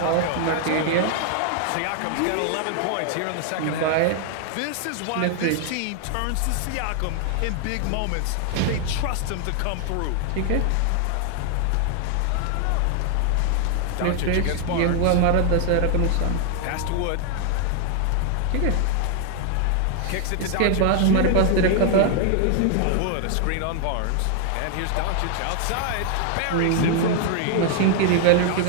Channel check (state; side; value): different; both; correlation 0.00